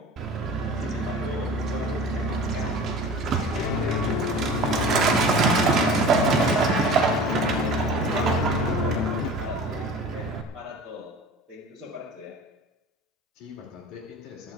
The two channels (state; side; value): normal; both; correlation 0.40